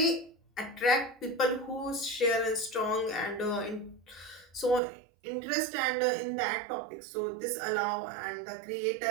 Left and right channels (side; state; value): left; drops out; at 4.8 s